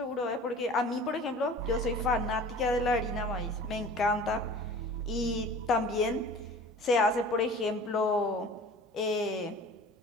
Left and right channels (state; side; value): normal; both; correlation 0.43